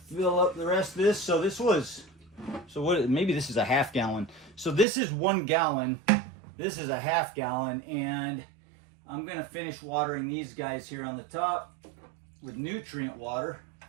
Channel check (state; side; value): drops out; left; at 4.9 s